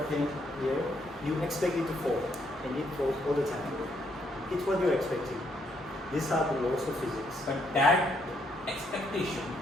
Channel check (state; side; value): normal; both; correlation 0.73